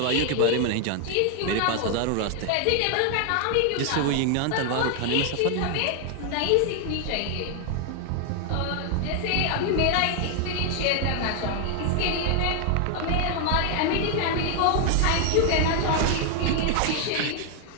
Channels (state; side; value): different; both; correlation 0.00